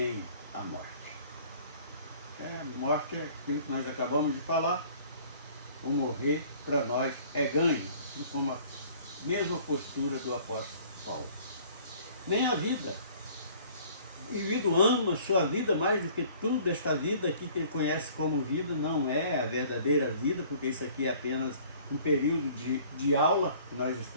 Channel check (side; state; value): both; inverted; correlation -0.53